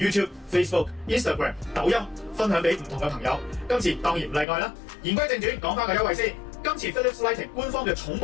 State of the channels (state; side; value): drops out; right; at 4.5 s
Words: YouTube、Facebook、Instagram、抖音，分享俾唔同嘅朋友。今次當然唔例外啦。言歸正傳，講翻個優惠先。今次 Philips Lighting 官方嘅重